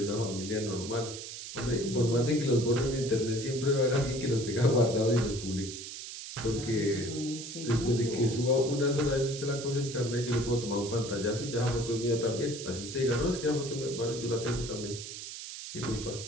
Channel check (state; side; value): noise; right; hiss, 10 dB below the sound